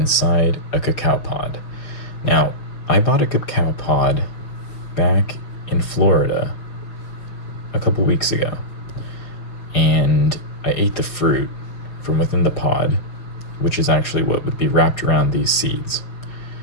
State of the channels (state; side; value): late; right; 6.0 ms